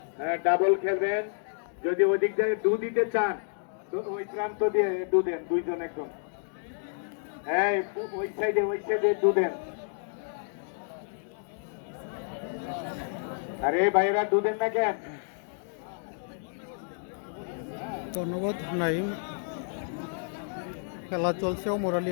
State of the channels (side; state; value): right; silent; digital silence